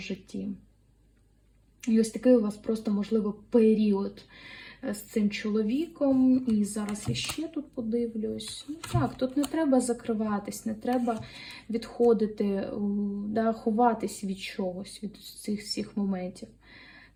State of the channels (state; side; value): identical; both; correlation 1.00